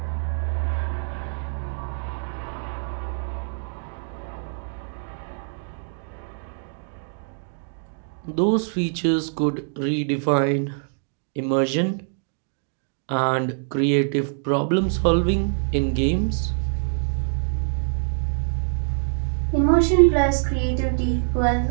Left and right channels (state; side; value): silent; left; digital silence